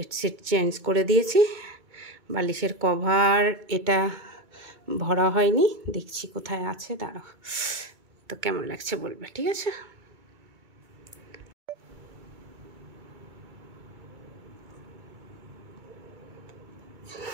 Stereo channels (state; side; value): late; left; 2.3 ms